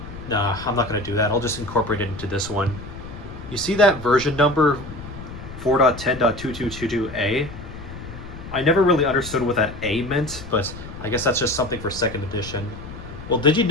nah, I'm not going to do that. I'll just incorporate it into this one. You see that version number 4.10.2222A? I never really understood what that A meant, but I guess that's just something for second edition. Well, did you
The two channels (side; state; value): left; noise; rumble, 13 dB below the sound